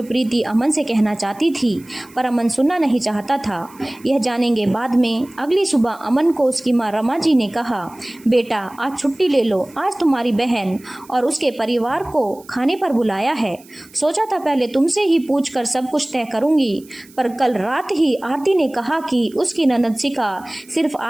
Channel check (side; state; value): right; noise; hiss, 25 dB below the sound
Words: प्रीति अमन से कहना चाहती थी, पर अमन सुनना नहीं चाहता था। यह जानेंगे बाद में। अगली सुबह अमन को उसकी माँ रमा जी ने कहा, बेटा आज छुट्टी ले लो, आज तुम्हारी बहन और उसके परिवार को खाने पर बुलाया है। सोचा था पहले तुमसे ही पूछकर सब कुछ तय करूंगी, पर कल रात ही आरती ने कहा कि उसकी ननद शिखा सिर्फ